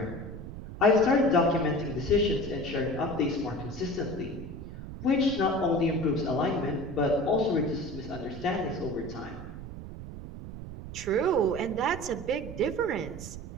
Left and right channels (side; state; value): right; noise; rumble, 11 dB below the sound